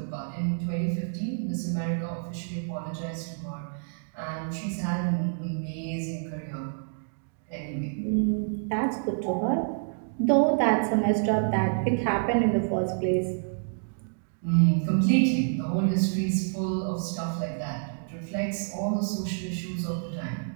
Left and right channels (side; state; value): left; silent; digital silence